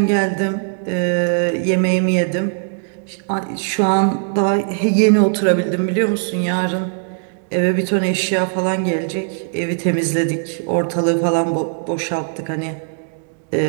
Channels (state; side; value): silent; left; 66 dB below the other